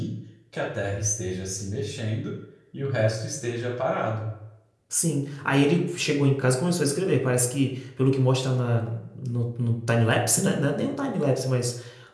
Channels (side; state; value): both; identical; correlation 1.00